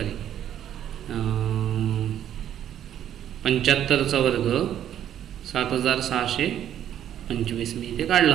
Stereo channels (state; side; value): quieter; left; 10.6 dB